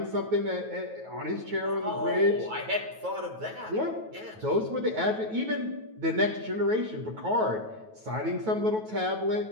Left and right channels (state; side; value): late; left; 9.3 ms